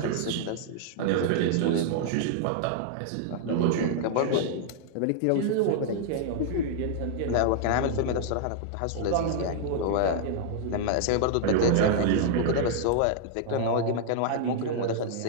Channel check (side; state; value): both; different; correlation -0.01